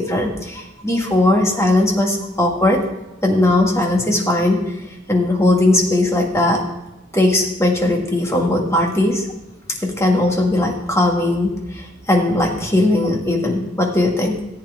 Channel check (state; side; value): normal; both; correlation 0.69